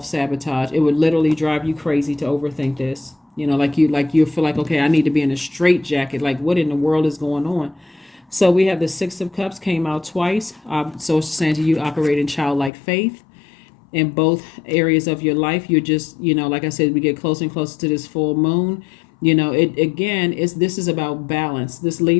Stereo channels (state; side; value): drops out; right; at 12.7 s